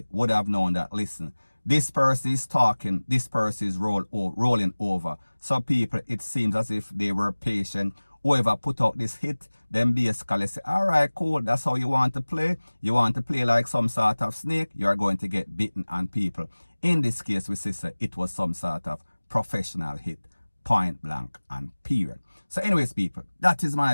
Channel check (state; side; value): inverted; both; correlation -1.00